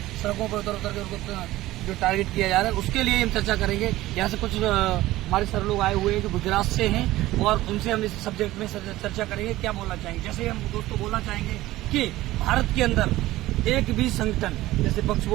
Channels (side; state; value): left; quieter; 16.6 dB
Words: सड़कों पर उतर के उनको जो टारगेट किया जा रहा है, उसके लिए हम चर्चा करेंगे। यहाँ से कुछ हमारे सर लोग आए हुए हैं जो गुजरात से हैं और उनसे हम इस सब्जेक्ट में चर्चा करेंगे। क्या बोलना चाहेंगे? जैसे हम दोस्तों बोलना चाहेंगे कि भारत के अंदर एक भी संगठन, जैसे पक्ष